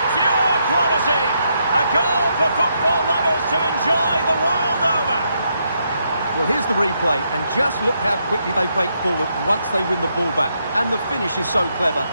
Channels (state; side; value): inverted; both; correlation -0.78